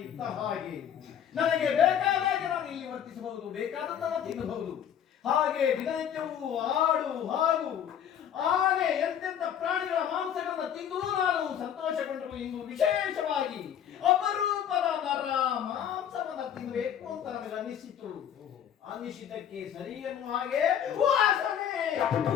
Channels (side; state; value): right; quieter; 9.3 dB